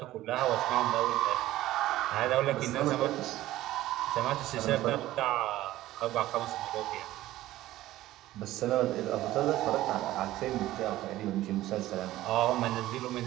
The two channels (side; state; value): left; quieter; 15.4 dB